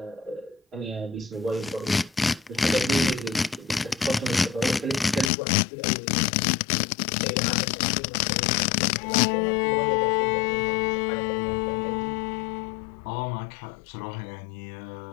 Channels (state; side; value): drops out; right; at 5.3 s